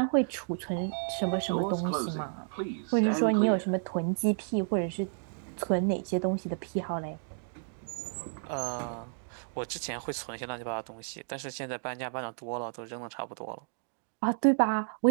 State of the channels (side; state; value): left; silent; digital silence